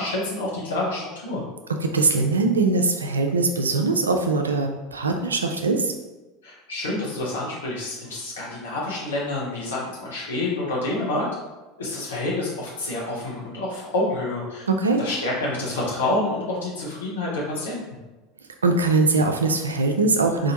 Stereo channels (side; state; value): both; normal; correlation -0.08